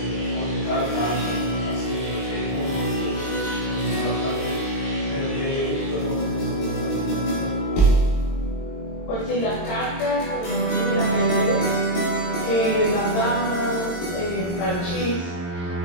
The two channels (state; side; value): late; right; 22 ms